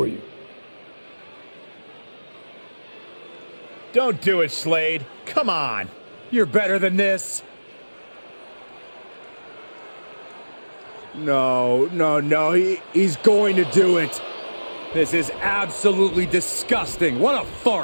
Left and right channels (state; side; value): inverted; both; correlation -1.00